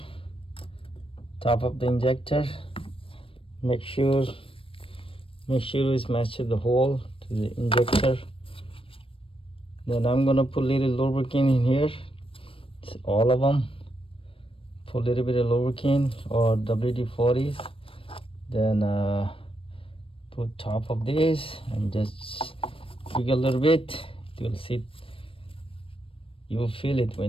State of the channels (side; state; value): right; late; 0.26 ms